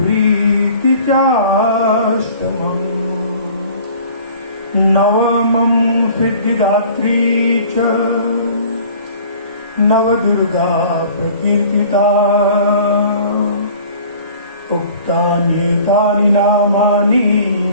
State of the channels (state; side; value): inverted; both; correlation -0.48